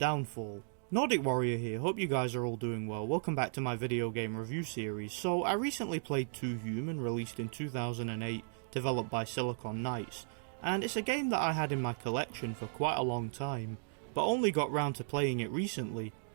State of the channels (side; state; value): left; silent; digital silence